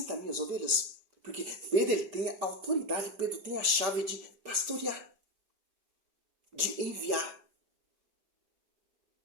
minhas ovelhas. Porque Pedro, ele tem a autoridade. Pedro tem a chave de pastorear. De enviar.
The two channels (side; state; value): left; late; 5.1 ms